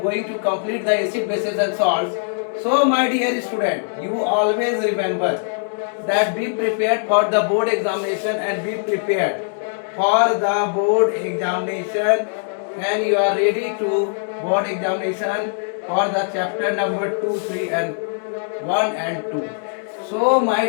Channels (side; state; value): right; silent; digital silence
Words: going to complete the acid, bases and salts. So my dear student, you always remember that be prepared for the board examination and be prepared for the board examination, and you are ready to board examination for the chapter number 2, 3 and 1 and 2. So my